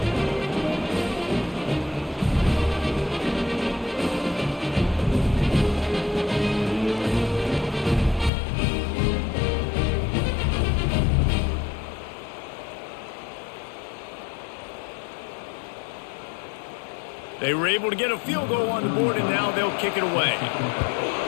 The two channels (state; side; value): drops out; right; at 8.3 s